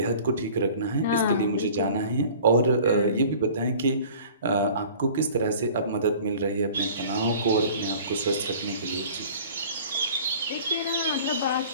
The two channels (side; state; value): both; inverted; correlation -0.46